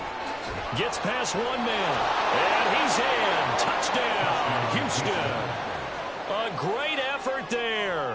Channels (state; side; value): identical; both; correlation 1.00